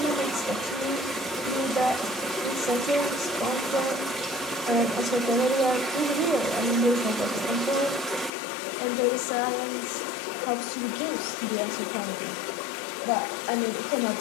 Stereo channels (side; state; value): right; drops out; at 8.3 s